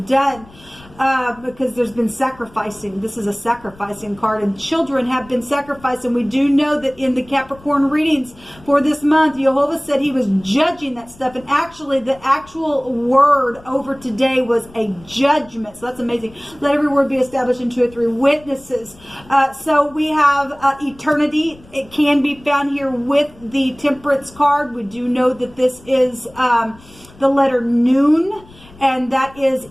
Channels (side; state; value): left; noise; rumble, 24 dB below the sound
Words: done. Because there's been sacrificing. This is a sacrificing card, and children have been sacrificed. And we do know that in the Capricorn readings for this month, Jehovah said he was judging that stuff. And actually, the actual word over today was a judgment. So that's amazing. Let every word be established in 2 or 3 witnesses. So we have eternity. It can be found here with the Temperance card. We do know that this is the letter Noon. And that